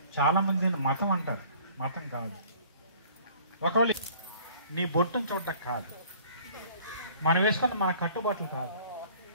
చాలామంది మతం అంటారు, మతం కాదు. ఒకవేళ నీ బొట్టును చూడటం కాదు, మనం వేసుకున్న మన కట్టుబాట్లు కాదు,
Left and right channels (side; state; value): both; inverted; correlation -0.53